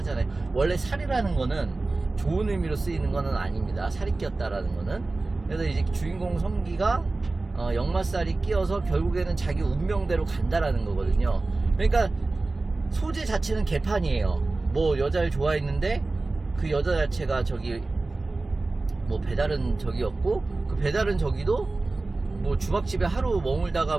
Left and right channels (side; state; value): left; quieter; 3.3 dB